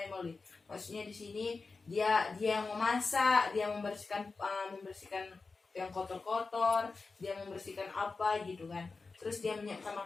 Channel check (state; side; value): quieter; right; 4.2 dB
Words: Maksudnya di sini dia yang memasak, dia membersihkan yang kotor-kotor, dia membersihkan apa gitu kan. Terus dia menyiapkan